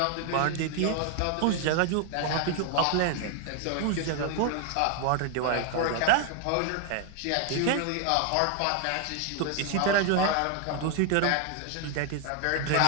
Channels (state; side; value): different; both; correlation 0.00